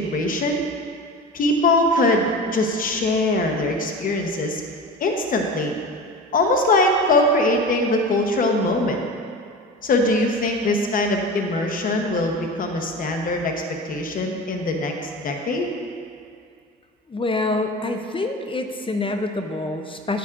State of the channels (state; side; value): normal; both; correlation 0.32